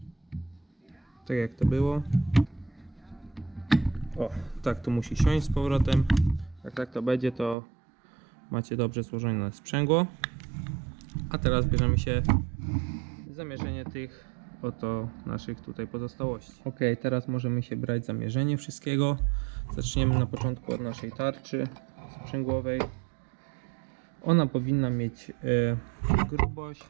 Tak jak to było. O, tak to musi siąść z powrotem. Jak tak to będzie, to macie dobrze złożone sprzęgło. A teraz bierzemy się zamierzenie tych oto naszych tutaj pozostałości. Ok, teraz możemy się brać zamierzenie wszystkiego. Zaczniemy na początku od naszej tarczy sprzęgłowej. Ona powinna mieć grubość,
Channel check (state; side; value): drops out; left; at 7.6 s